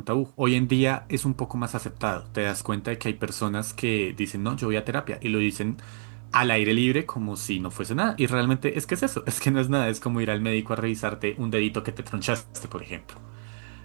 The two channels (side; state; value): left; silent; digital silence